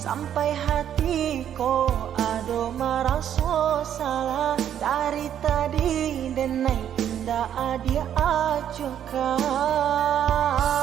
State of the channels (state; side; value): quieter; left; 9.9 dB